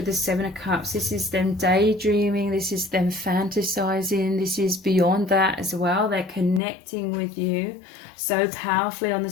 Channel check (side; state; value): right; drops out; at 6.6 s